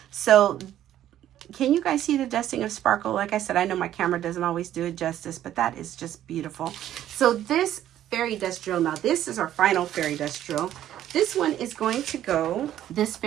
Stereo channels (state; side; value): quieter; left; 12.0 dB